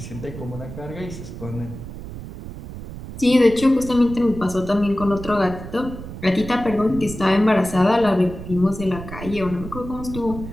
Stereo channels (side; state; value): right; noise; rumble, 11 dB below the sound